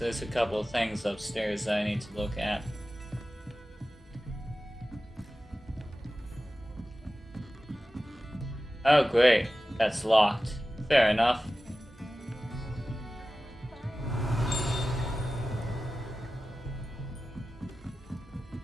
a couple of things upstairs that I need to look at. Oh great, that's locked. Fair enough.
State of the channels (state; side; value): normal; both; correlation 0.95